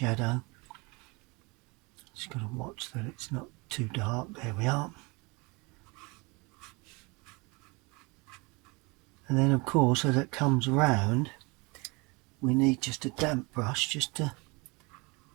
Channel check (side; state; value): left; quieter; 27.2 dB